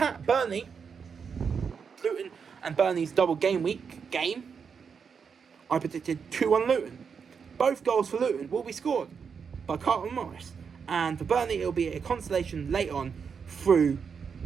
Burnley. Luton and Burnley's double game week game. I predicted 2-1 Luton. Both goals for Luton will be scored by Carlton Morris. And for Burnley, it will be a consolation late on through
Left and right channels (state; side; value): quieter; left; 6.2 dB